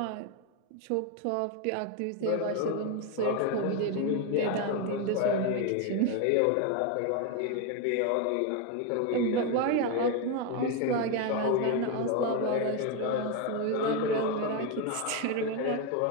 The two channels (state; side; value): different; both; correlation 0.02